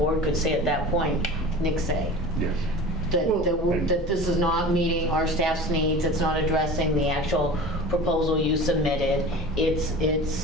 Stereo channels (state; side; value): normal; both; correlation 0.36